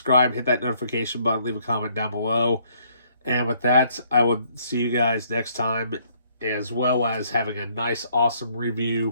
hit that notification button, leave a comment down below. And with that, I will see you guys next time, as well as having a nice, awesome review,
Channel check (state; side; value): inverted; both; correlation -0.66